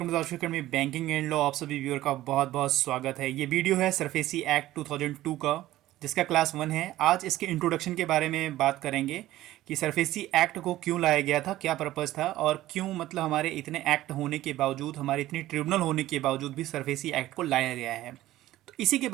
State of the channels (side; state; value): left; quieter; 15.3 dB